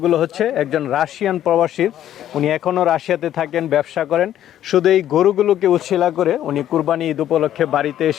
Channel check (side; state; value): right; quieter; 11.6 dB